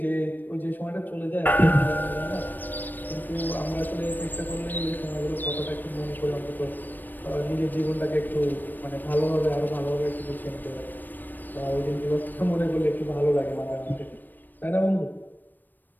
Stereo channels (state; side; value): late; right; 0.090 ms